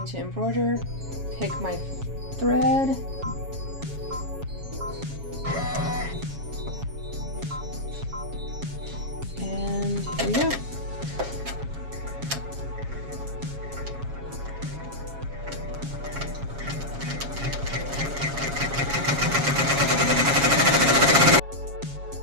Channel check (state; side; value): late; left; 7.3 ms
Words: to embroider, pick my thread. And here we go.